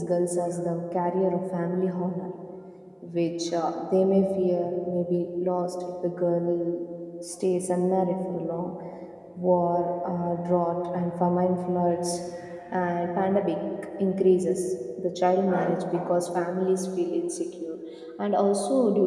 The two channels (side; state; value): both; identical; correlation 1.00